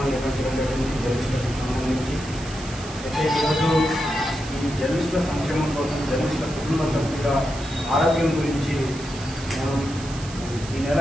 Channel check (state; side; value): noise; right; hiss, 14 dB below the sound